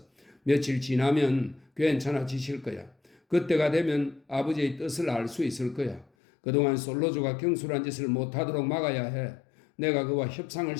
며칠 지나면 괜찮아지실 거야. 그때가 되면 아버지의 뜻을 알 수 있을 거야. 그동안 솔로조가 경솔한 짓을 못하도록 막아야 해. 내가 그와 협상을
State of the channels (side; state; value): right; drops out; at 6.1 s